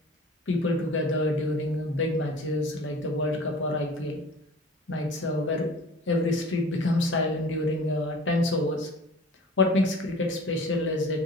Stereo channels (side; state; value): both; normal; correlation 0.44